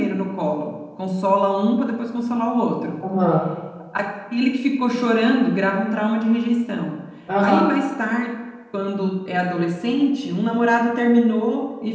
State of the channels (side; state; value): both; identical; correlation 1.00